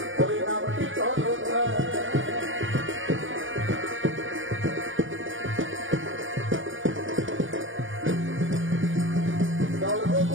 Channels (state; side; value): late; left; 0.58 ms